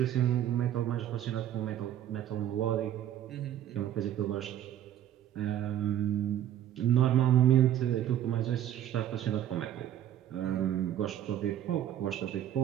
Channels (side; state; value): left; quieter; 11.3 dB